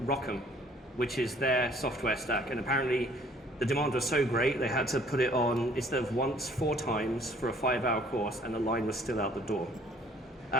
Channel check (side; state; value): both; normal; correlation 0.58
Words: ROCm, which is their software stack. And apparently the demand was so great, they had to put it on, instead of once, 4 times for a 5-hour course, and the line was still out the door.